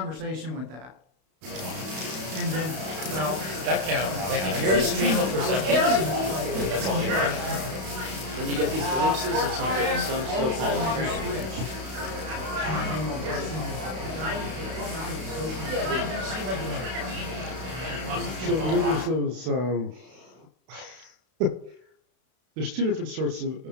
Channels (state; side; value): late; left; 32 ms